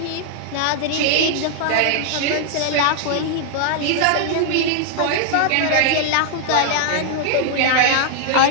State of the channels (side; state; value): both; different; correlation 0.00